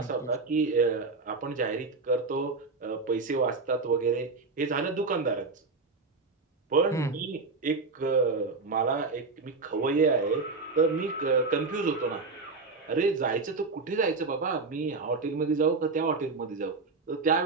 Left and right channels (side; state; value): left; quieter; 4.0 dB